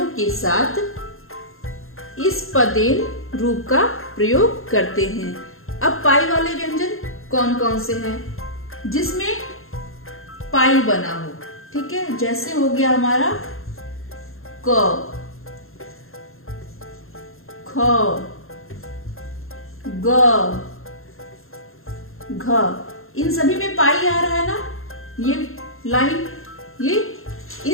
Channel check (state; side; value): late; right; 0.61 ms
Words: के साथ इस पदेन रूप का प्रयोग करते हैं। अब पाई वाले व्यंजन कौन कौन से हैं जिसमें पाई बना हो, ठीक है। जैसे हो गया हमारा क, ख, ग, घ, इन सभी में पाई आ रहा है ना, ये लाइन, ये